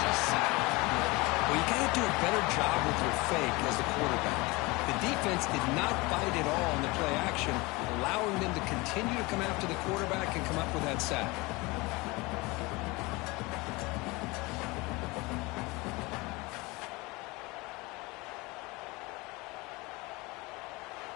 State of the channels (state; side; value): quieter; right; 23.9 dB